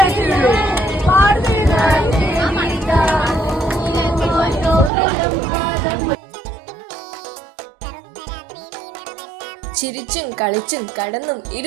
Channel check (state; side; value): drops out; left; at 4.9 s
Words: ചിരിച്ചും കളിച്ചും കടന്നും